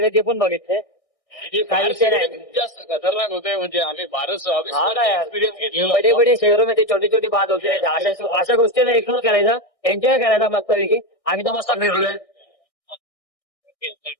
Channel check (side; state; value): right; late; 1.6 ms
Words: ते पण बघितले. काही विषय नाही. जास्त खतरनाक होते म्हणजे आम्ही फारच बडे बडे शहरामध्ये छोटी छोटी बात होते. अशा गोष्टीला इग्नोर करायचा. एन्जॉय करायचा मस्तपैकी. आम्ही तर मस्त फिरलोय.